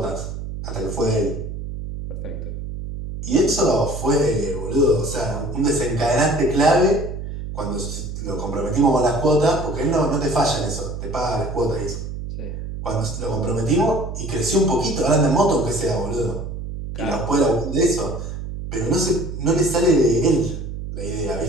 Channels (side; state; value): right; noise; hum, 7 dB below the sound